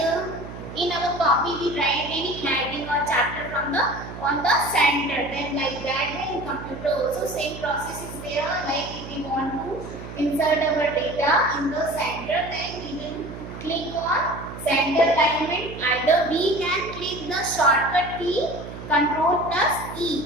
In our copy, we write any heading or chapter from the on the center. Then like that, in computer also same process is there. Like if we want to insert our data in the center, then we will click on center alignment. Either we can click the shortcut key Control plus E,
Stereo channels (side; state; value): right; noise; hum, 11 dB below the sound